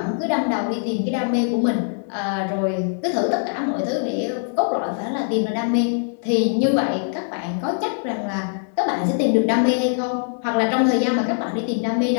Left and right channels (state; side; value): silent; right; digital silence